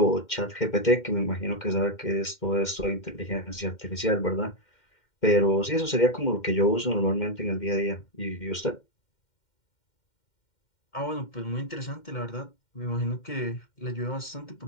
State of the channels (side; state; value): right; late; 2.1 ms